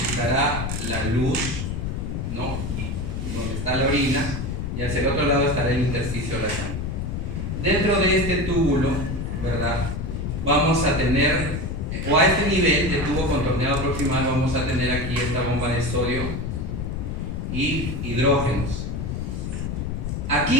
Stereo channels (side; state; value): left; noise; rumble, 3 dB below the sound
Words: la luz, ¿no?, donde está la orina, y hacia el otro lado estará el intersticio de la sangre. Dentro de este túbulo, ¿verdad?, vamos a tener, o a este nivel de tubo contorneado proximal, vamos a tener aquí esta bomba de sodio y hidrógenos.